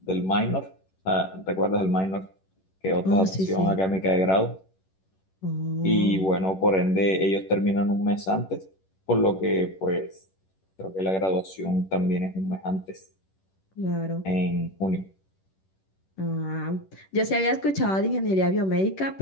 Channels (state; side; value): late; right; 11 ms